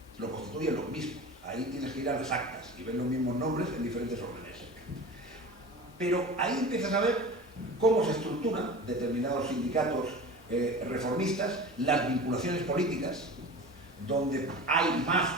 lo constituyen los mismos. Ahí tienes que ir a las actas y ver los mismos nombres en diferentes órdenes. Pero ahí empiezas a ver cómo se estructuran determinados sindicatos reformistas, las vinculaciones políticas, donde hay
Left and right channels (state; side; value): normal; both; correlation 0.35